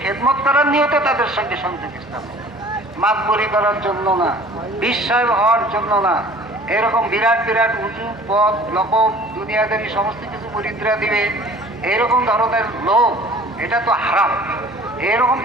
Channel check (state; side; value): normal; both; correlation 0.48